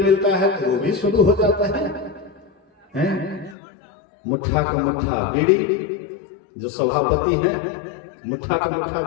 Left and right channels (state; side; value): drops out; right; at 3.6 s